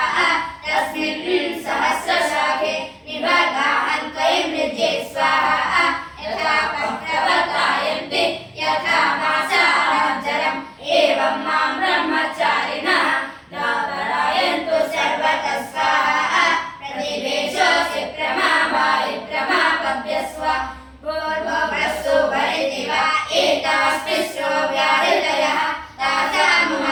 तस्मिन् सहस्रशाखे निभगाहं त्वयि मृजे स्वाहा यथा प्रवर्तायन्ते यथा मासाजरम् एवं मां ब्रह्मचारिणः दापरायन्तु सर्वतः स्वाहा प्रतिवेशोऽसि प्रमावायि प्रमापद्य स्वा पूर्ववस्तु वरिति वा एतास्तिस्रो व्याहृतयः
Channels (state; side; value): identical; both; correlation 1.00